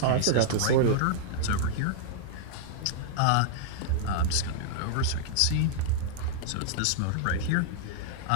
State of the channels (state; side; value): different; both; correlation -0.01